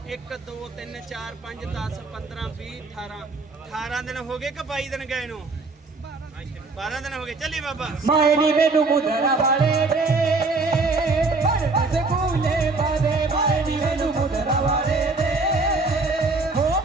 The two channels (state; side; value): quieter; left; 3.7 dB